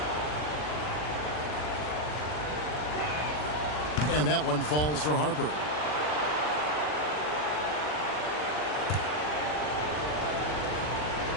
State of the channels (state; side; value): late; right; 40 ms